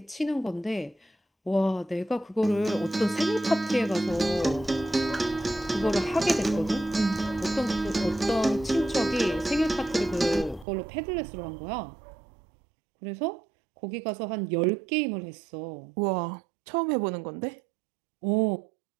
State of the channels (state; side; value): drops out; left; at 10.7 s